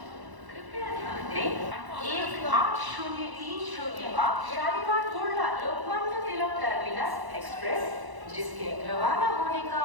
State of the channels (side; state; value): left; late; 1.0 ms